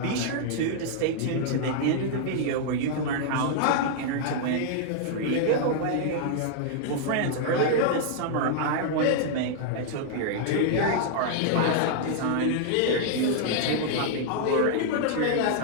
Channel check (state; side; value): different; both; correlation -0.01